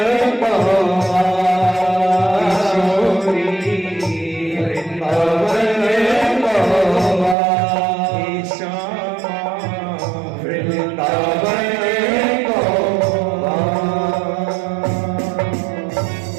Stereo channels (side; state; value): left; drops out; at 7.4 s